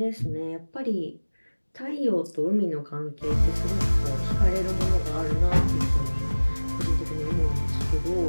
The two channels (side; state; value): both; inverted; correlation -1.00